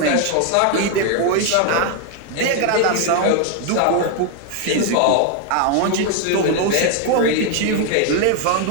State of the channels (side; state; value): both; different; correlation 0.01